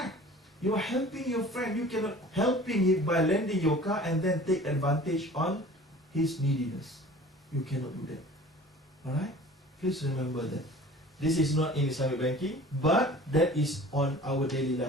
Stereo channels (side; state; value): both; normal; correlation 0.44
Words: You are helping your friend. You cannot helping him by lending your car and then take advantage on his neediness. You cannot do that. Alright? Please remember that. This is not in Islamic banking, but that is on our daily